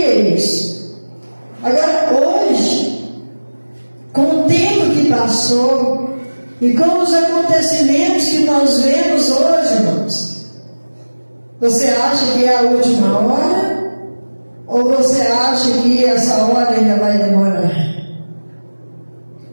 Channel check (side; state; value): both; inverted; correlation -1.00